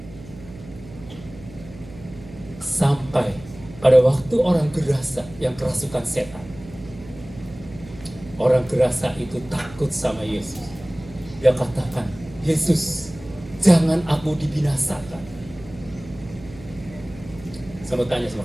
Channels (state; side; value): noise; right; hum, 18 dB below the sound